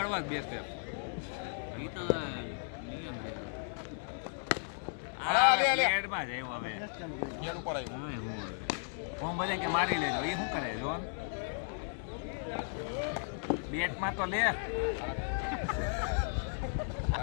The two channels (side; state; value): right; silent; 54 dB below the other